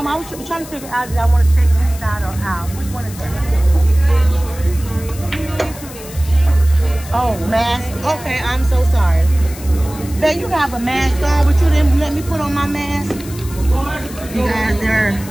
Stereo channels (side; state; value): left; noise; hiss, 16 dB below the sound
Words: was trying to figure out if I want to sit inside or out. Which one is that? Oh, mask. Okay, I'm so sorry. Babe, you have a mask on, but you didn't let me put on my mask. You guys, they're